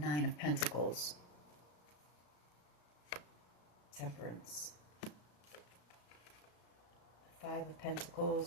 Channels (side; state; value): right; late; 34 ms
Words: of Pentacles. Temperance. Five of